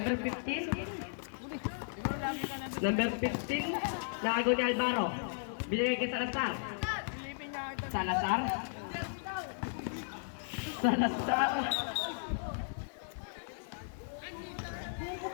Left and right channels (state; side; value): silent; right; digital silence